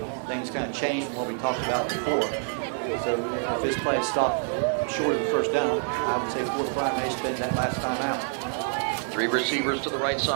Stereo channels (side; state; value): left; silent; 58 dB below the other